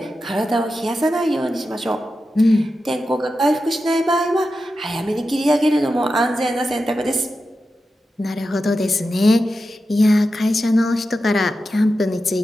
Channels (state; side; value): normal; both; correlation 0.90